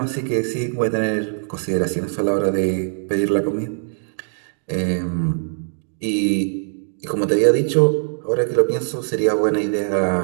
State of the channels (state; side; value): silent; left; digital silence